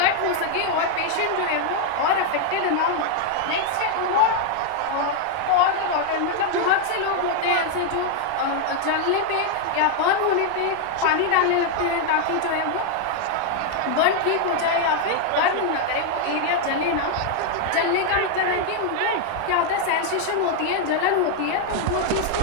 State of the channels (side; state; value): both; different; correlation 0.00